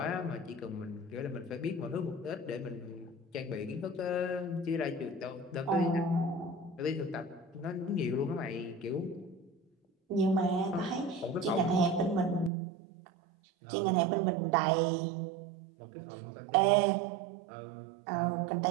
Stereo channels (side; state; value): left; drops out; at 12.5 s